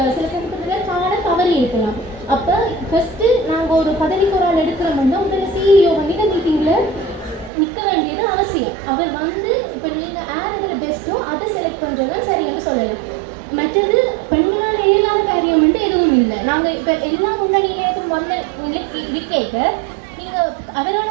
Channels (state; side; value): drops out; left; at 7.5 s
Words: சமயத்தில் காண தவறி இருக்கலாம். அப்போ ஃபஸ்ட்டு நாங்கள் ஒரு பதவிக்கு ஒரு ஆள் எடுக்கிறோம்னா உங்களை சிஇஓ பண்ணிட்டு மீட்டிங்கில் நிற்க வேண்டியது அவசியம். அவர் வந்து இப்போ நீங்கள் யார் இதில் பெஸ்ட்டோ அதை செலக்ட் பண்ணுறது தான் சரின்னு சொல்லலாம். மற்றது பெண்களால் இயலாத காரியம் வந்து எதுவும் இல்லை. நாங்கள் இப்போ எல்லா முன்னணியிலும் வந்த இது கேட்க நீங்கள்